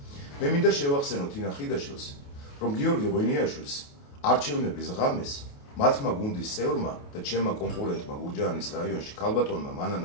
მე მინდა შევახსენო თინა ხიდაშელს, რომ გიორგი ღვინიაშვილს არჩევნების ღამეს მათმა გუნდის წევრმა და ჩემმა კონკურენტმა გურჯაანის რაიონში ქალბატონმა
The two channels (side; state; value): right; late; 28 ms